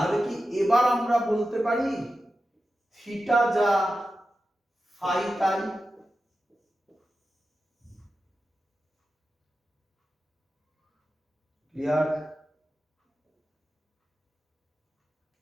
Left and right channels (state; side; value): normal; both; correlation 0.92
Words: কি এবার আমরা বলতে পারি থিটা যা ফাই তাই? ক্লিয়ার?